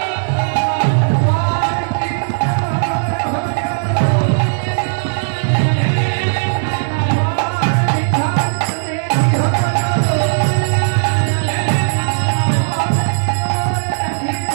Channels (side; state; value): left; silent; digital silence